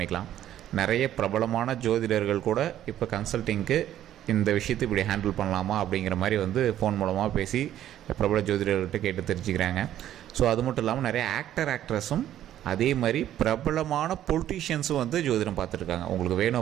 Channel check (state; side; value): quieter; left; 11.9 dB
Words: நிறைய பிரபலமான ஜோதிடர்கள் கூட இப்போ கன்சல்ட்டிங்க்கு இந்த விஷயத்தை இப்படி ஹேண்டில் பண்ணலாமா அப்படிங்கிற மாதிரி வந்து ஃபோன் மூலமாக பேசி பிரபல ஜோதிடர்கள்ட்ட கேட்டு தெரிஞ்சுக்கிறாங்க. ஸோ அது மட்டும் இல்லாமல் நிறைய ஆக்ட்ரஸும் அதே மாதிரி பிரபலமான பொலிட்டீஷியன்ஸும் வந்து ஜோதிடம் பார்த்துருக்காங்க. உங்களுக்கு வேணும்